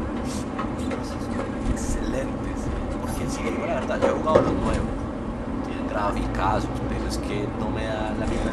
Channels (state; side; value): identical; both; correlation 1.00